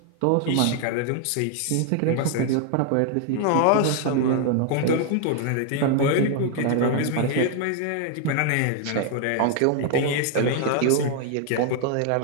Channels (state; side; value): different; both; correlation 0.00